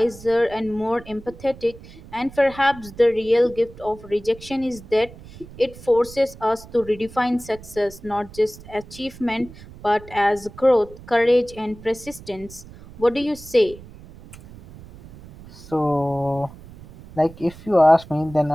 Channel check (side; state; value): right; noise; rumble, 18 dB below the sound